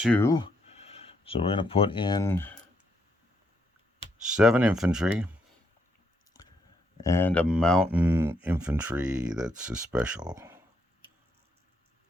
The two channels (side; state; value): both; normal; correlation 0.76